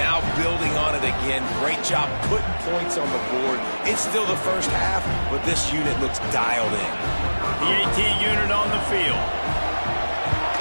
building on it again. Great job putting points on the board. It's still the 1st half, but this unit looks dialed in. The AT unit on the field.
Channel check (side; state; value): both; inverted; correlation -1.00